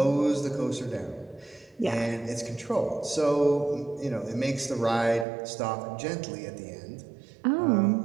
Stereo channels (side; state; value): left; drops out; at 5.2 s